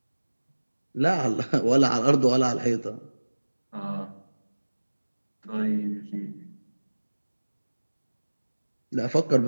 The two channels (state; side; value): inverted; both; correlation -1.00